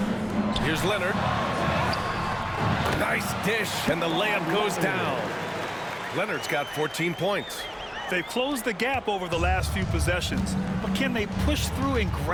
Here's Leonard. Nice dish, and the layup goes down. Leonard's got 14 points. They've closed the gap over the last few possessions, but can they push through and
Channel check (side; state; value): both; identical; correlation 1.00